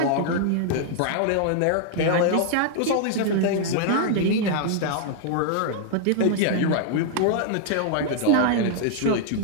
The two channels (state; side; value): different; both; correlation -0.01